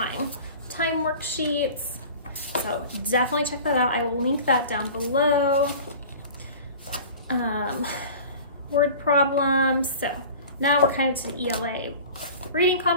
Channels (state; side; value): inverted; both; correlation -0.40